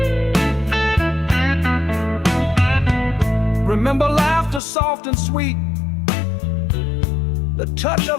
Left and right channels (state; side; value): drops out; right; at 4.6 s